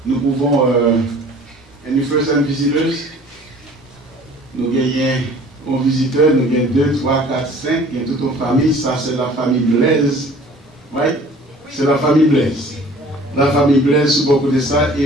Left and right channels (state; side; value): normal; both; correlation 0.49